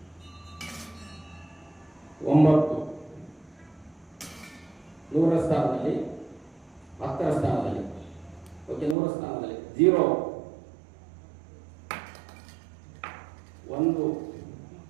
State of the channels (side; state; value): left; drops out; at 9.0 s